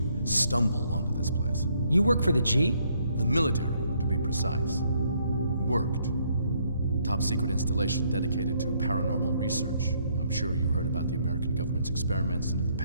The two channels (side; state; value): both; inverted; correlation -0.69